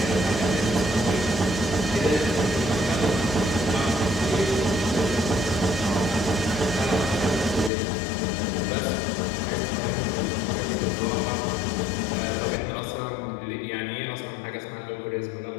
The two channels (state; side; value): drops out; right; at 7.7 s